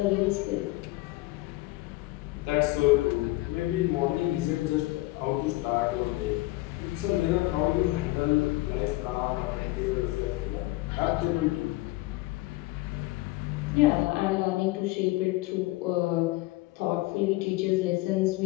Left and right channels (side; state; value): right; quieter; 19.8 dB